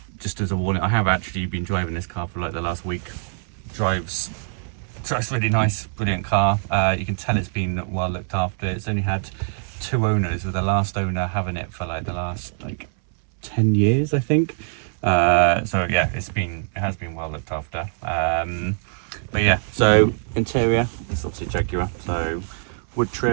just as a warning, I have actually been driving this car for like the last week. Drives really nice, brilliant car. You can tell it's been well looked after. It's only had 2 owners, with the last owner having it for like the last 10 years, I think. So yeah, it has been well looked after. But yeah, so interior, it's obviously Jaguar, so wood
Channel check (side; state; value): left; silent; 63 dB below the other